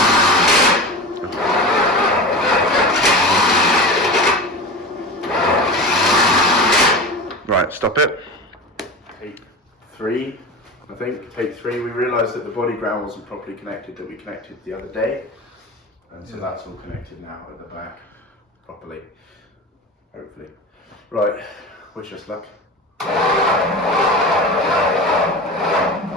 Right, stop it. Take 3, I think. Take 3. We realised that the body ground wasn't properly connected, that we connected the other day. And so that's all connected now at the back properly, hopefully. Right, wish us luck.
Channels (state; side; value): normal; both; correlation 0.30